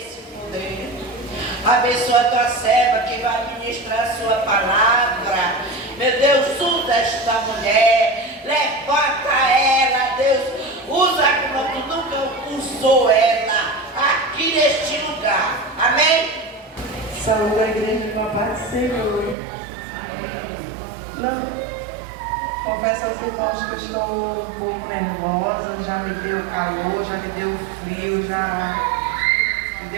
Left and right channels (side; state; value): left; drops out; at 19.4 s